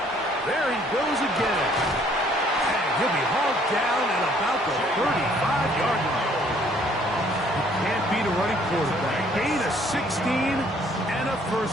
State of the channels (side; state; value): both; normal; correlation 0.62